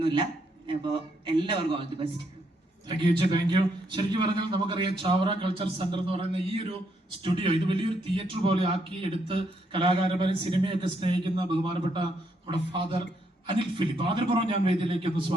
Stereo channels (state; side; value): normal; both; correlation 0.74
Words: അപ്പോൾ എല്ലാവർക്കും all the best. Thank you. ശരിക്കും പറഞ്ഞാൽ നമുക്കറിയാം ചാവറ കൾച്ചർ സെന്റർ എന്ന് പറയുന്ന ഈ ഒരു സ്റ്റുഡിയോ ഇത് വലിയൊരു തിയേറ്റർ പോലെ ആക്കി എടുത്ത് കലാകാരന്മാരെ സിനിമയൊക്കെ സ്നേഹിക്കുന്ന ബഹുമാനപ്പെട്ട നമ്മുടെ ഫാദർ അനിൽ ഫിലിപ്പ്, ആദരപൂർവ്വം ഞാൻ വേദിയിലേക്ക് ഒന്ന്